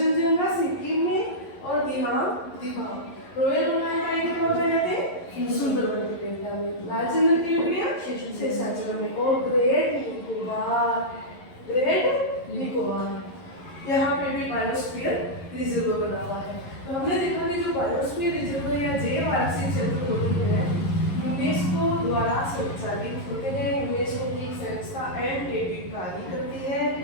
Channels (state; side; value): late; right; 11 ms